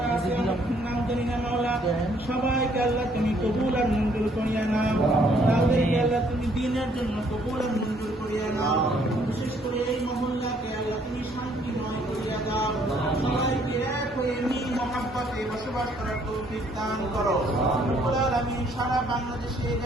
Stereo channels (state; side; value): normal; both; correlation 0.65